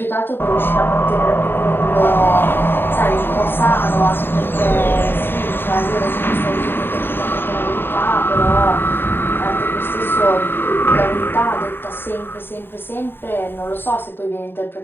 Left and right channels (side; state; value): right; late; 0.10 ms